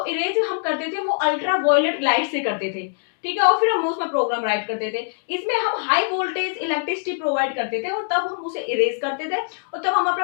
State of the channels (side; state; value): right; silent; digital silence